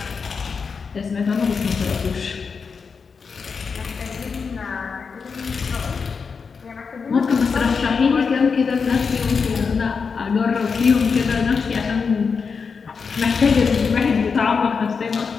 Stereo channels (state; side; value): quieter; right; 5.5 dB